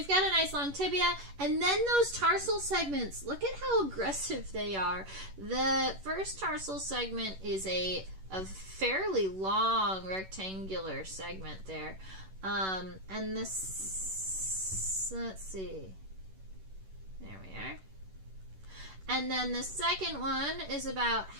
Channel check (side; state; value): left; late; 11 ms